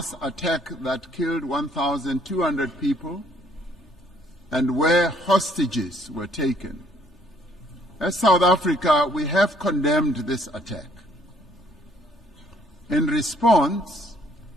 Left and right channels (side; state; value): both; normal; correlation 0.64